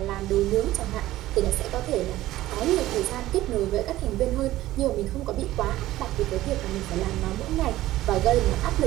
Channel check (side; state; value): left; quieter; 15.6 dB